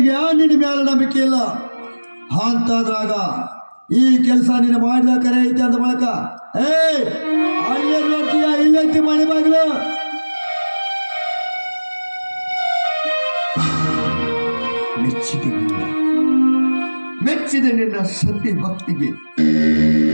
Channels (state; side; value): inverted; both; correlation -1.00